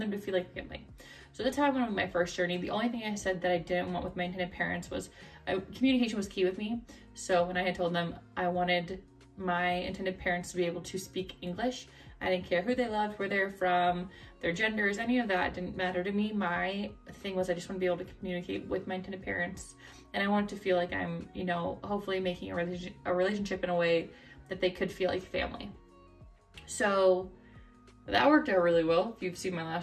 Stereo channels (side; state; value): both; identical; correlation 1.00